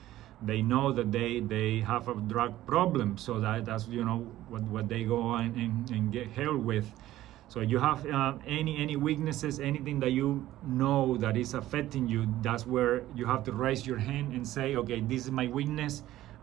they know that they have a drug problem, so that's what they go and get help with. So you have any weaknesses, anything that you know that is affecting you, that's where you have to raise your hand and say, okay, this is my weakness,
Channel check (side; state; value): left; quieter; 14.6 dB